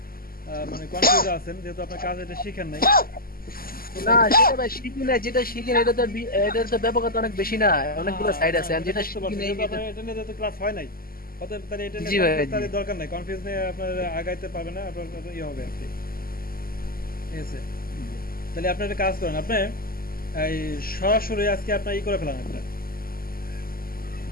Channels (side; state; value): right; late; 0.42 ms